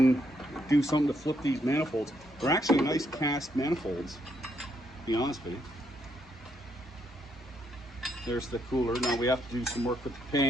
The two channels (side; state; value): both; normal; correlation 0.75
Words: do something to flip these manifolds. They're actually nice cast manifolds, to be honest with you. There's the cooler. Now we have to do some work with the